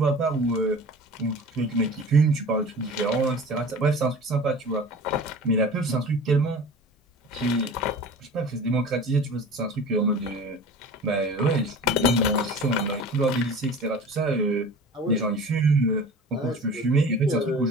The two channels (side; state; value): both; normal; correlation 0.39